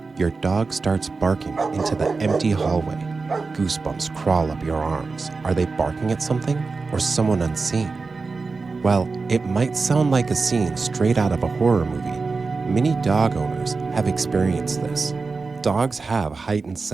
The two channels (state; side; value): quieter; left; 4.2 dB